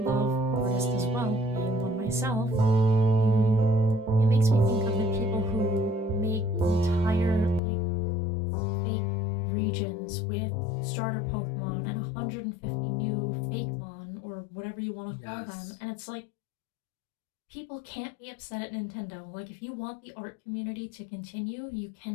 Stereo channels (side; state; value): right; drops out; at 7.6 s